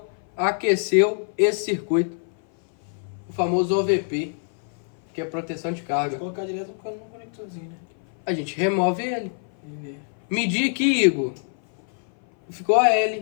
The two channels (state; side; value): silent; right; 58 dB below the other